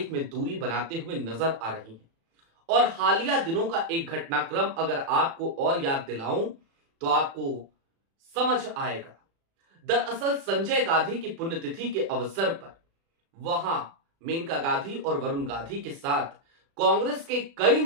में दूरी बनाते हुए नजर आ रही हैं। और हालिया दिनों का एक घटनाक्रम अगर आपको और याद दिलाऊं तो आपको समझ आएगा। दरअसल संजय गांधी की पुण्यतिथि के अवसर पर वहां मेनका गांधी और वरुण गांधी के साथ कांग्रेस के कई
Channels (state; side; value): late; left; 36 ms